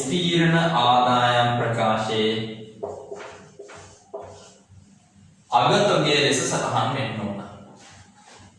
අගතොගයේ ලෙස සටහන් වෙන්න ඕන.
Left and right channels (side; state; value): both; identical; correlation 1.00